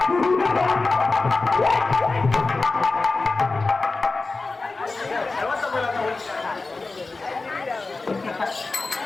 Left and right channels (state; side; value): quieter; right; 3.6 dB